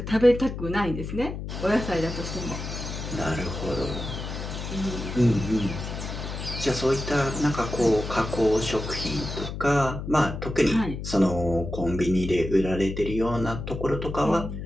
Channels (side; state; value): left; noise; hum, 7 dB below the sound